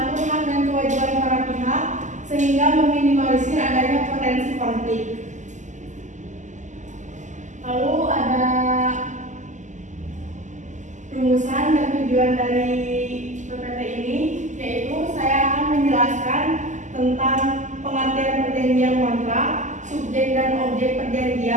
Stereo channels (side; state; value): left; late; 0.35 ms